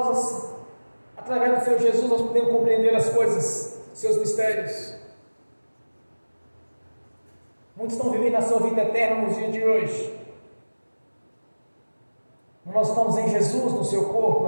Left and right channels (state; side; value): inverted; both; correlation -1.00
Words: através do Senhor Jesus, nós podemos compreender as coisas, seus mistérios. Muitos estão vivendo a sua vida eterna nos dias de hoje. Nós estamos em Jesus, no seu corpo,